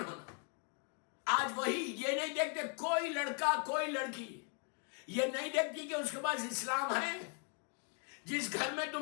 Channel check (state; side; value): quieter; right; 39.8 dB